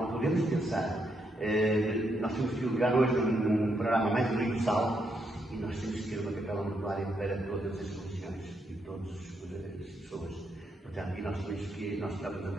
podemos pensar. Nós temos que ligar hoje num programa mais universal e nós temos que ter uma Capela Mortuária para todas as religiões e todas as pessoas. Portanto, e nós estamos a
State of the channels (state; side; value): normal; both; correlation 0.78